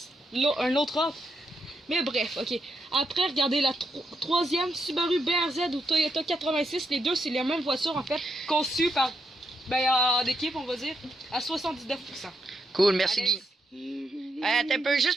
Un autre offre. Mais bref, ok. Après, regardez la troisième Subaru BRZ ou Toyota 86. Les deux, c'est les mêmes voitures en fait, conçues par. En équipe, on va dire, à 79%. Cool, merci Alex. Guy. Attends un peu,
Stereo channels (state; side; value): normal; both; correlation 0.81